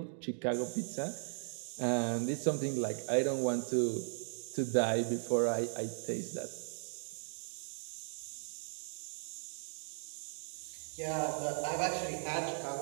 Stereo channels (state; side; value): silent; left; digital silence